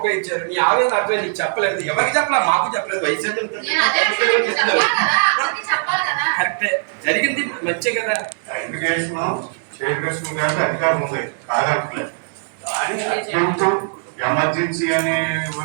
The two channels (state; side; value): silent; left; digital silence